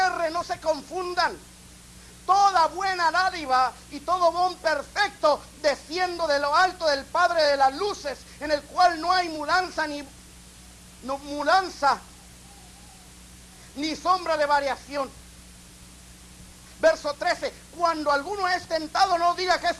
no se confundan. Toda buena dádiva y todo don perfecto desciendo de lo alto del Padre de las luces, en el cual no hay mudanza ni sombra de variación. Verso 13: cuando alguno es tentado, no diga que es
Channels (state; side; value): identical; both; correlation 1.00